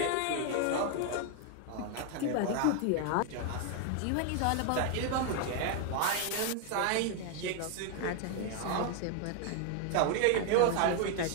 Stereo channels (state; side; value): different; both; correlation 0.01